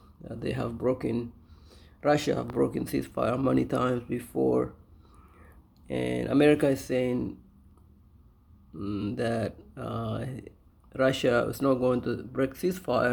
Russia have broken ceasefire many times before, and America is saying that Russia is not going to break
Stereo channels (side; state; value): both; identical; correlation 1.00